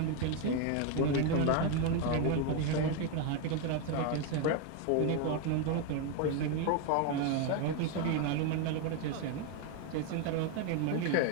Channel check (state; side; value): different; both; correlation 0.02